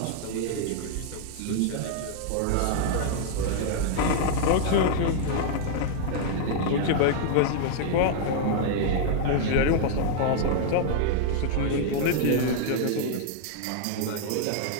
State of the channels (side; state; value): both; different; correlation -0.01